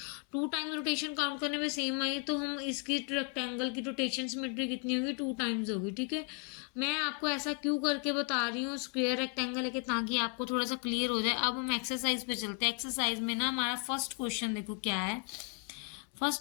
2 टाइम रोटेशन काउंट करने पे सेम आई है तो हम इसकी रेक्टेंगल की रोटेशन सिमेट्री कितनी होगी, 2 टाइम्स होगी, ठीक है। मैं आपको ऐसा क्यों करके बता रही हूँ स्क्वायर रेक्टेंगल है कि ताकि आपको थोड़ा सा क्लियर हो जाए। अब हम एक्सरसाइज पे चलते हैं। एक्सरसाइज में ना हमारा फर्स्ट क्वेश्चन देखो क्या है।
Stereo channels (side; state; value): right; quieter; 35.6 dB